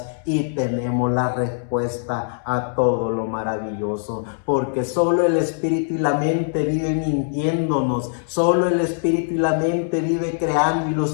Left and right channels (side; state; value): right; silent; 64 dB below the other